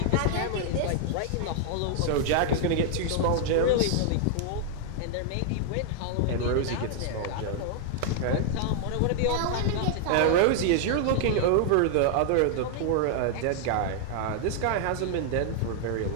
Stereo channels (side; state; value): both; different; correlation 0.00